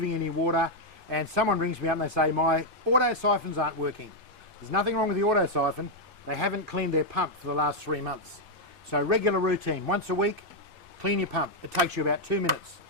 any water, and someone rings me up and they say, my auto siphons aren't working. There's nothing wrong with the auto siphon, they haven't cleaned their pump for the last 3 months. So regular routine, once a week, clean your pump. It takes you about 2 minutes.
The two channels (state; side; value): normal; both; correlation -0.01